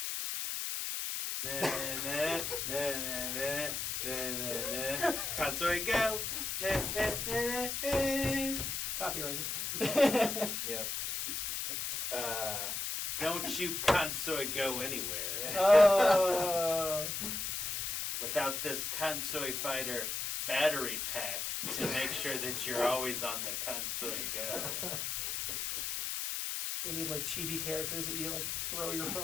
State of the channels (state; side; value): noise; left; hiss, 2 dB below the sound